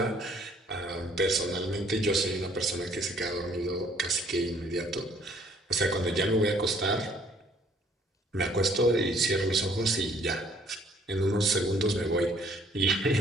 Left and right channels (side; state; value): both; normal; correlation 0.61